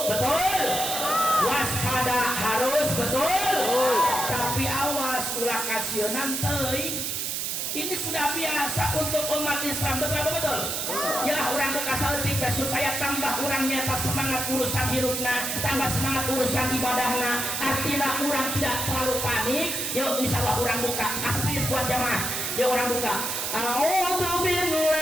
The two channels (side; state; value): right; noise; hiss, 2 dB below the sound